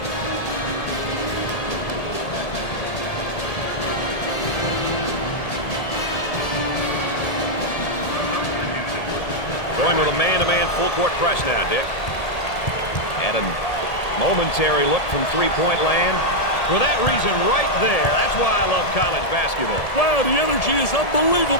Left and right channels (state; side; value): late; right; 1.7 ms